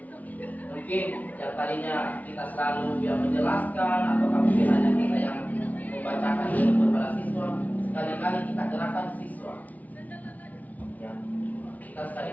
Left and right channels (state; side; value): late; right; 0.074 ms